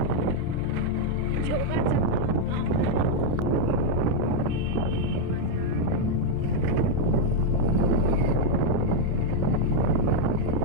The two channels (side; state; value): both; different; correlation 0.00